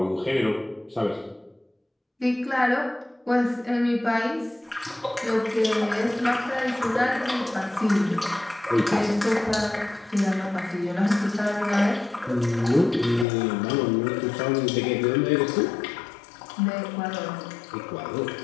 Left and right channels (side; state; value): right; drops out; at 13.2 s